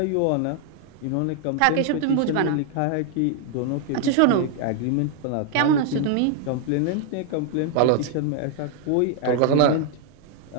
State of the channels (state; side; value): different; both; correlation 0.00